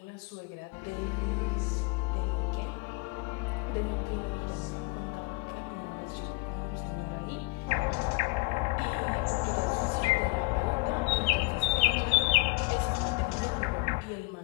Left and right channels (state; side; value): quieter; right; 26.4 dB